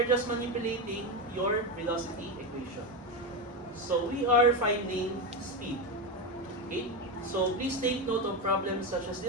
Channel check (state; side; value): normal; both; correlation 0.14